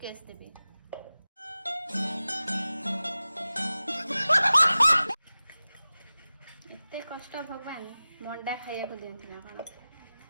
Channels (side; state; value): both; inverted; correlation -0.96